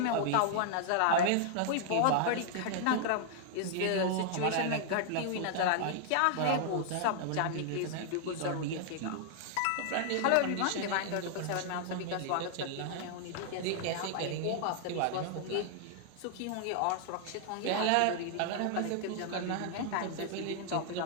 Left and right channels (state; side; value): different; both; correlation 0.00